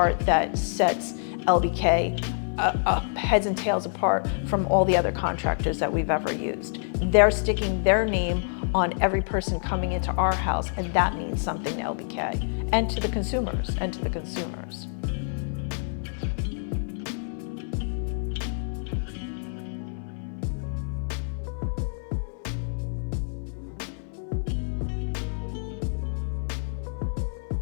that sets LBK heads and tails apart from all the other contractors that we've ever used. They're sticking their name on every person coming into our house, and that means something to LBK and to the consumers.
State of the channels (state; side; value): silent; right; 58 dB below the other